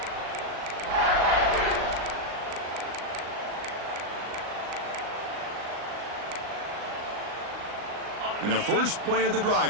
And the first play of the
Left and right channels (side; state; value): left; late; 38 ms